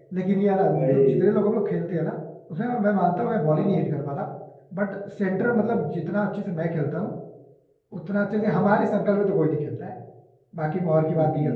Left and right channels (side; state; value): both; identical; correlation 1.00